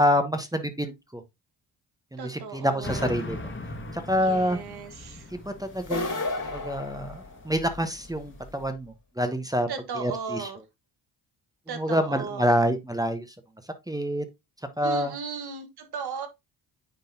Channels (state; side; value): normal; both; correlation 0.57